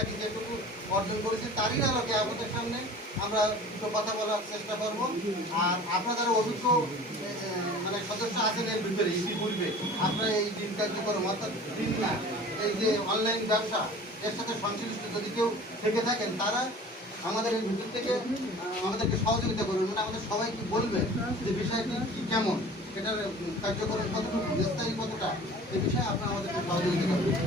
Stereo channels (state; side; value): normal; both; correlation 0.43